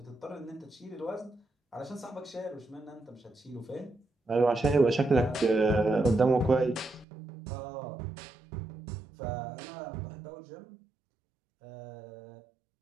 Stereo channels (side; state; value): left; drops out; at 7.1 s